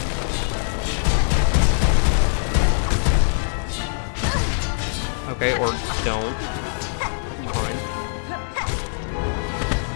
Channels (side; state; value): right; silent; digital silence